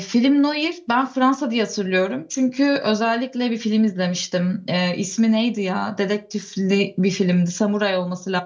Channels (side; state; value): both; identical; correlation 1.00